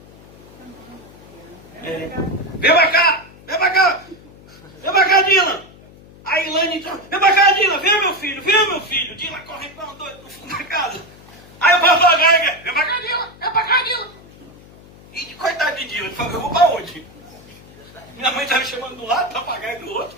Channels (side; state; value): left; noise; hum, 22 dB below the sound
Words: Vem pra cá, vem pra cá, vem pra cá, Dylan. A Ilane entrou, vem pra cá, Dylan, vem meu filho. Dylan correndo para um doido no fundo da casa. Aí o papagaio, vem pra cá, Dylan, vem pra cá, Dylan. E coitado de Dylan, ele falou, eu vou pra onde? Minha mãe estava chamando do lado, papagaio do outro,